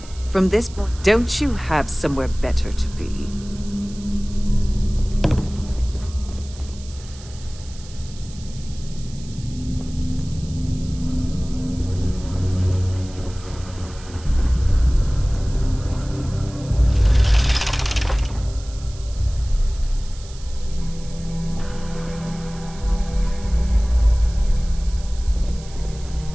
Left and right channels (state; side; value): noise; right; hiss, 19 dB below the sound